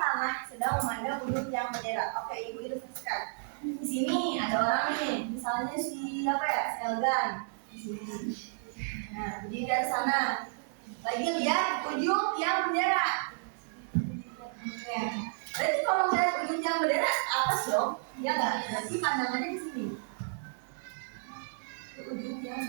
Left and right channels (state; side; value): silent; left; 56 dB below the other